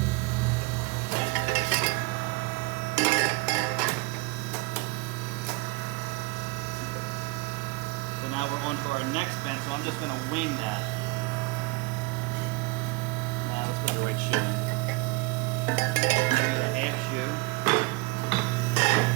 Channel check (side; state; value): left; quieter; 24.0 dB